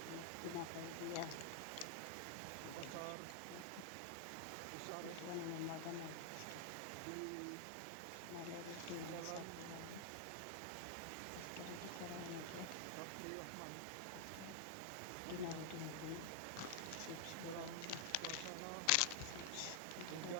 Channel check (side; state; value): both; different; correlation 0.00